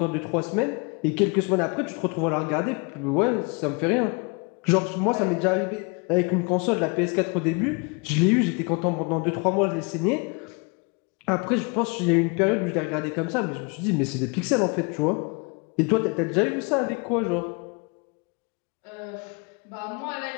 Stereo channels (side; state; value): right; quieter; 31.7 dB